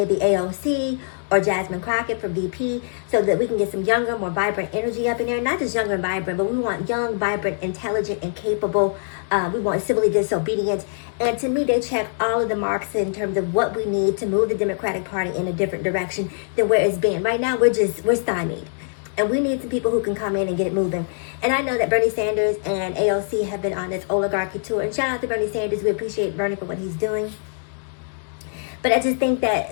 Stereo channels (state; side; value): silent; right; digital silence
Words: AOC or Jasmine Crockett for VP, so that we can get some younger, more vibrant energy up in there. Not just younger and vibrant, but we want young, vibrant, intelligent, and capable. We want civilly disobedient. And to me, they check all of the marks in terms of what we need to move the Democratic Party in a different direction than where it's been. Right now, we're stymied. And we need some people who can come in and get it moving. And I know that Bernie Sanders and AOC have been on this oligarchy tour. And shout out to Bernie Sanders. We appreciate Bernie for what he's doing. But I just think